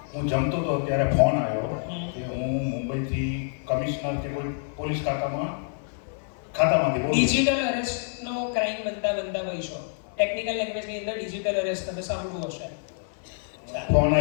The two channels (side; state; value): right; silent; 60 dB below the other